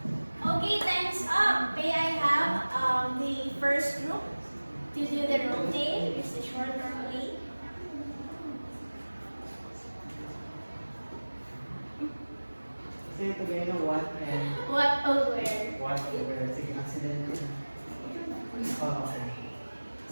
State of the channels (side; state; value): both; inverted; correlation -1.00